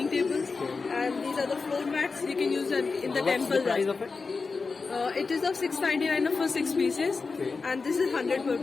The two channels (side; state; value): right; quieter; 4.4 dB